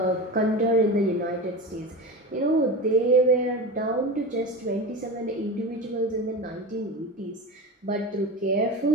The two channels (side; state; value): both; normal; correlation 0.27